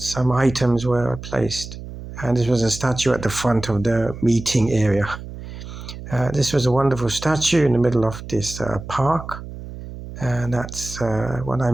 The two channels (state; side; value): noise; right; hum, 12 dB below the sound